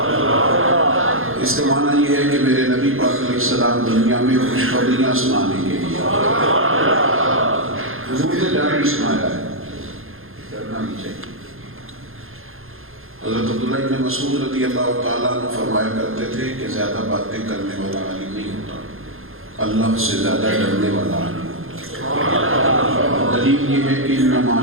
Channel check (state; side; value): late; left; 0.60 ms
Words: اس کا معنی یہ ہے کہ میرے نبی پاک علیہ السلام دنیا میں خوشخبریاں سنانے کے لیے حضور نے ڈر بھی سنایا ہے، ڈرنا نہیں چاہیے. حضرت عبداللہ بن مسعود رضی اللہ تعالیٰ عنہ فرمایا کرتے تھے کہ زیادہ باتیں کرنے والا عالم نہیں ہوتا، اللہ سے زیادہ ڈرنے والا عالم ہوتا. دلیل یہ ہے کہ انما